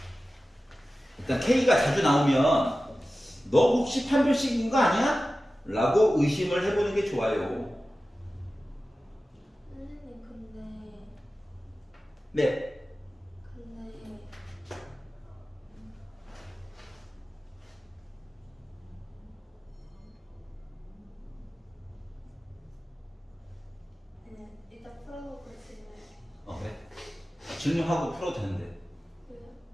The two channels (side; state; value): both; normal; correlation 0.95